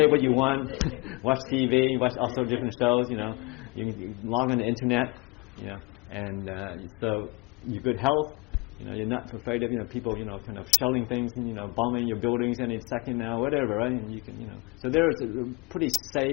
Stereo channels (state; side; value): quieter; right; 26.0 dB